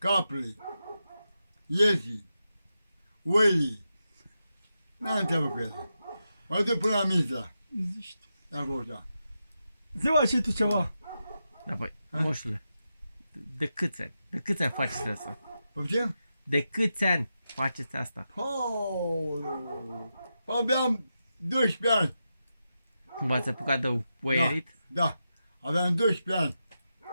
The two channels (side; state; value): both; inverted; correlation -0.88